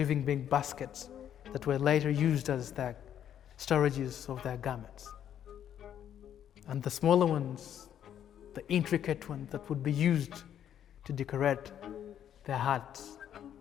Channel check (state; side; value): quieter; right; 10.0 dB